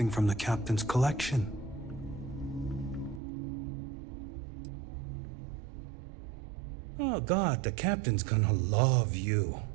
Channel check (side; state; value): left; drops out; at 3.2 s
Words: from the captain's collection. Oh God, the captain's gonna love you.